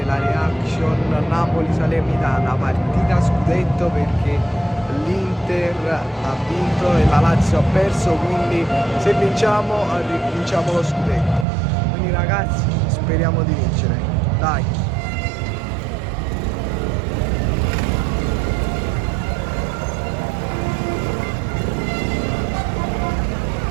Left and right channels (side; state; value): left; drops out; at 11.5 s